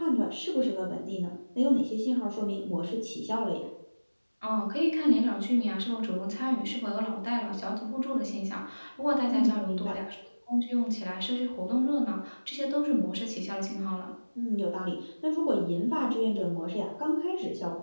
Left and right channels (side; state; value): both; inverted; correlation -1.00